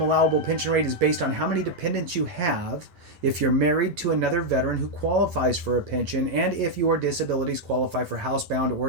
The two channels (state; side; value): late; left; 10 ms